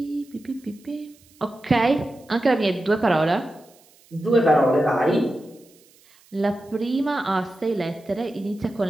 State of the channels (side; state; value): right; noise; hiss, 29 dB below the sound